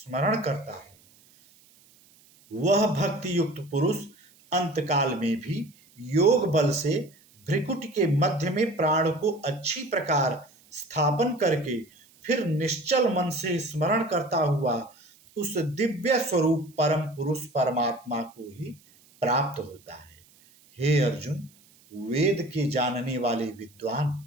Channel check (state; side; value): noise; right; hiss, 29 dB below the sound